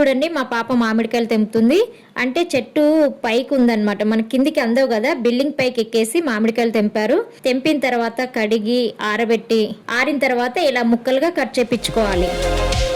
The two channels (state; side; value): identical; both; correlation 1.00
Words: మా పాప మామిడికాయలు తెంపుతుంది. అంటే చెట్టు పైకి ఉందన్నమాట, మన కిందికి అందవు కదా, బిల్డింగ్ పైకి ఎక్కేసి మామిడికాయలు తెంపారు. తెంపిన తర్వాత కడిగి ఆరబెట్టి ఆరిన తర్వాత ఇలా ముక్కలుగా కట్ చేపించుకోవాలి.